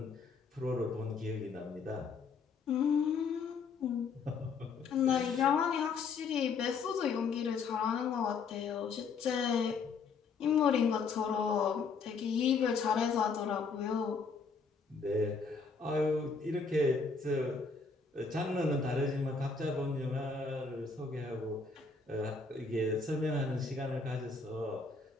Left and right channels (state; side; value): quieter; right; 4.9 dB